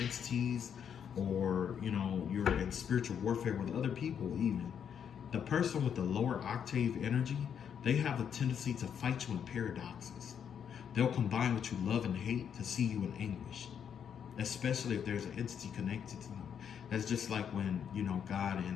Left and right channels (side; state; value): right; quieter; 8.1 dB